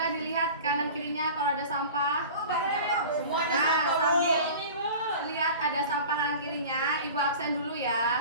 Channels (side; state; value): both; inverted; correlation -0.38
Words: dilihat kanan kirinya kalau ada sampah. Semuanya Nah, satu, Bu. sambil lihat ada sampah kanan kirinya, ibu absen dulu